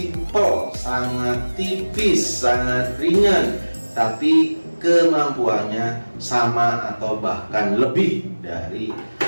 sangat tipis, sangat ringan, tapi kemampuannya sama atau bahkan lebih dari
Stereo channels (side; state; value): both; inverted; correlation -1.00